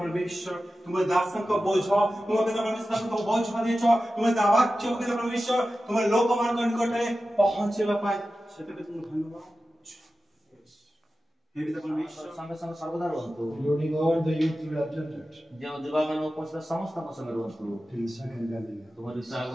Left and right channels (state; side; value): normal; both; correlation 0.94